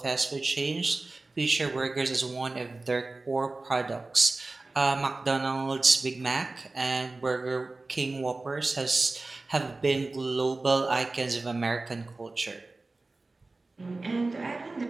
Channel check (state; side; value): quieter; left; 3.3 dB